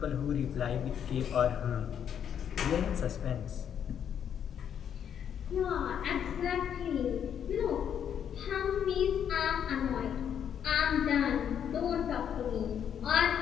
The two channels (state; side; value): quieter; right; 8.7 dB